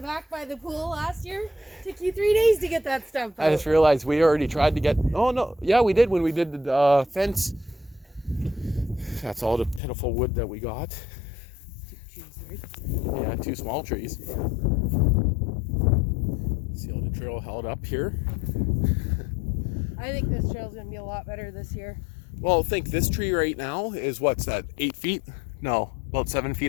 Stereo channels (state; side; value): drops out; right; at 9.8 s